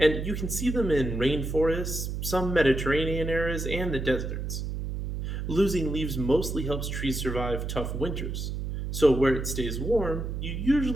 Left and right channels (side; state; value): right; noise; hum, 4 dB below the sound